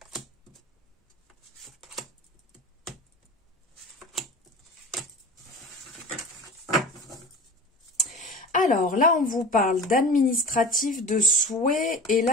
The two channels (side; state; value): both; normal; correlation 0.36